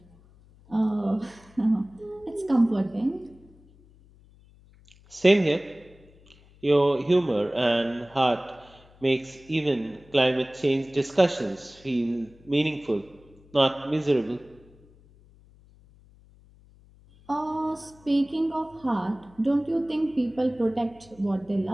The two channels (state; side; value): noise; left; hum, 27 dB below the sound